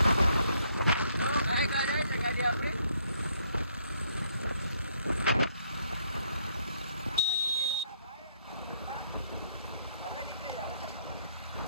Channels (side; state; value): both; inverted; correlation -0.69